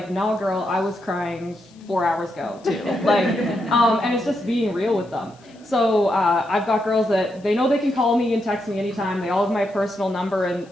no, girl, I was crying 4 hours ago too. And it's just being real with them. So I've got girls that they know they can call me and text me anytime. They all have my personal number,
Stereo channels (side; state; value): left; noise; hiss, 30 dB below the sound